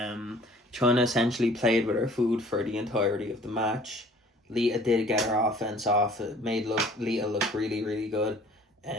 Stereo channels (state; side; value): normal; both; correlation 0.52